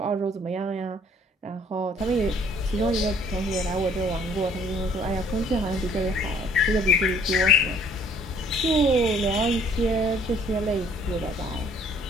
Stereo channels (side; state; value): both; normal; correlation 0.59